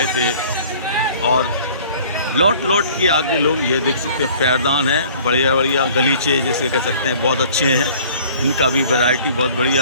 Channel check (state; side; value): inverted; both; correlation -0.51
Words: थे। और लौट के आगे लोग ये देख सकते हैं, पैरदान है, बढ़िया बढ़िया गलीचे जिसे कह सकते हैं, बहुत अच्छे हैं। इनका भी वैरायटी बहुत